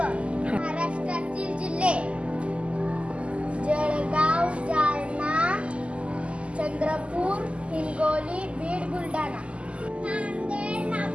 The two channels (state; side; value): late; left; 0.057 ms